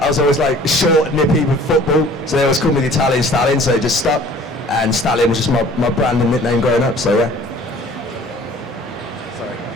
was always like short, nippy with football. So they always called me the Italian Stallion. So it just stuck, and Stallion was just my brand and nickname growing up. So yeah. Sorry.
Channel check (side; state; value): both; normal; correlation 0.50